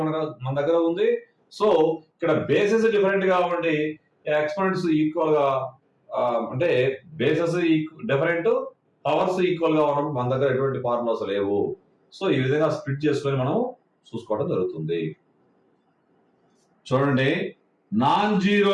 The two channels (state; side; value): identical; both; correlation 1.00